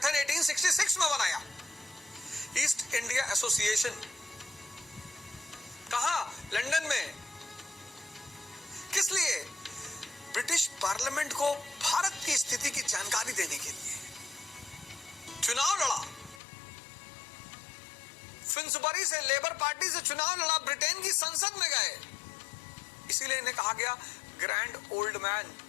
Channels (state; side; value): drops out; right; at 16.4 s